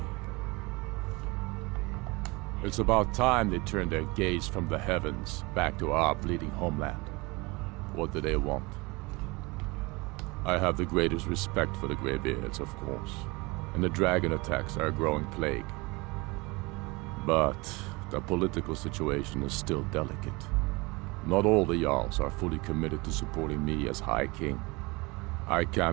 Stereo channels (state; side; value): quieter; left; 25.2 dB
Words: It's about time they turned their gaze from the heavens back to our bleeding homeland. What do they want? I have the greatest respect for the Greybeards, of course, and the dragon attacks are a growing plague. But the political situation is still delicate. Not all the Jarls are fully committed to supporting me as High King. I